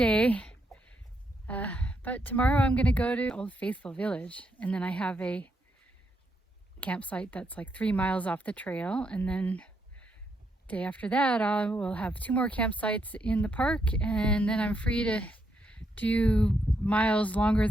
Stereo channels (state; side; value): normal; both; correlation 0.78